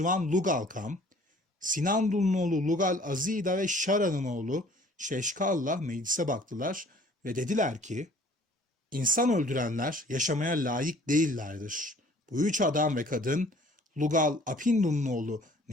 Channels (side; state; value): both; normal; correlation 0.54